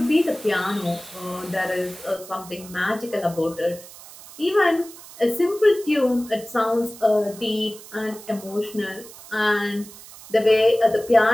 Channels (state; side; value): noise; right; hiss, 18 dB below the sound